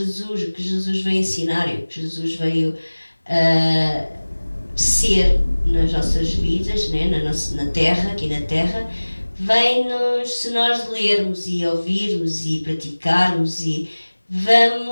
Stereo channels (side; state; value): both; inverted; correlation -1.00